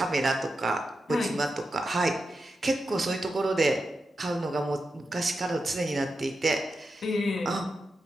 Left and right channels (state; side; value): normal; both; correlation 0.89